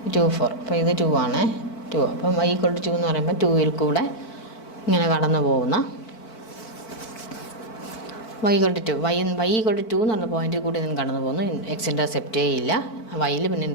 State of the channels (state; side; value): late; right; 4.5 ms